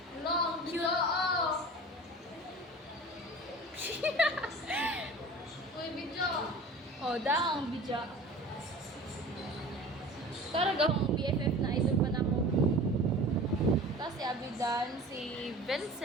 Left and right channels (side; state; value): both; normal; correlation 0.40